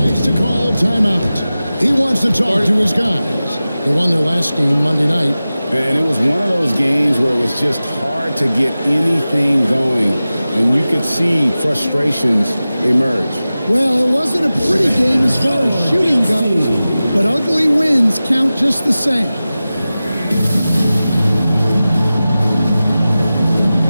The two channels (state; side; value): inverted; both; correlation -0.96